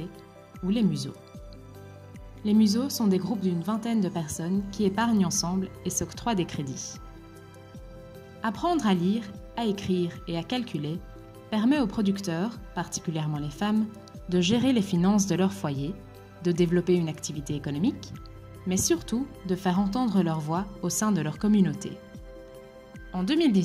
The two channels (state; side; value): identical; both; correlation 1.00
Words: ou les museaux. Les museaux sont des groupes d'une vingtaine de personnes qui épargnent ensemble et s'octroient des crédits. Apprendre à lire, à écrire et à calculer permet aux producteurs, particulièrement les femmes, de gérer les finances de leur foyer, de développer une activité économique, mais surtout de faire entendre leur voix au sein de leur communauté. En